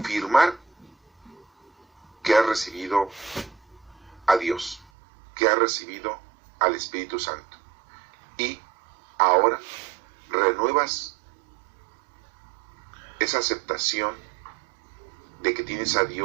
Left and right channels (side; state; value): left; drops out; at 4.9 s